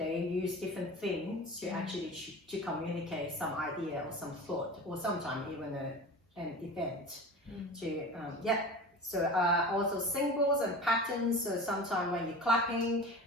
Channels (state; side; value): normal; both; correlation 0.34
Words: use different things to actually to communicate some idea or some thought, or sometimes even an event. So also symbols and patterns. So sometimes when you're clapping